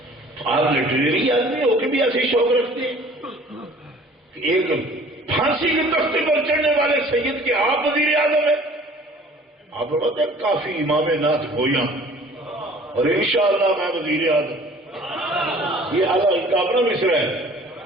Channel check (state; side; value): normal; both; correlation 0.50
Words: آپ لٹریری آدمی ہو کے بھی ایسے شوق رکھتے ہیں؟ ایک پھانسی کے تختے پر چڑھنے والے سید کے آپ وزیر اعظم ہیں. آپ بتاتے ہیں کافی امام نعت گویا اور انشاءاللہ میں وزیر اعظم. یہ ان کا اپنا مصرع ہے،